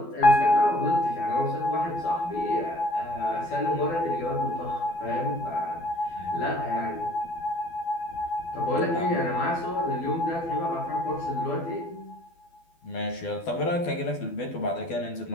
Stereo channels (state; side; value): late; right; 12 ms